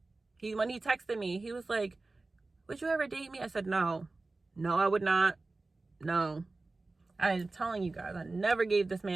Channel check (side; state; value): left; quieter; 3.4 dB